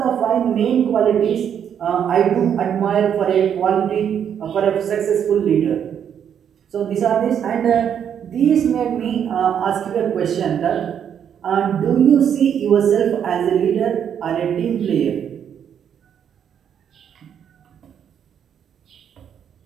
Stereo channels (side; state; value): left; quieter; 8.6 dB